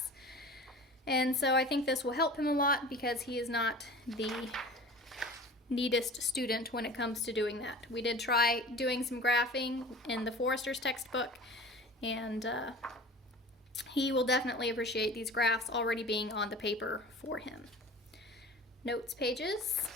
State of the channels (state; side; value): normal; both; correlation 0.39